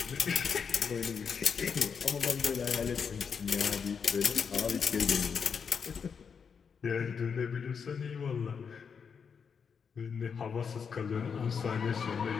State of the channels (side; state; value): right; quieter; 6.4 dB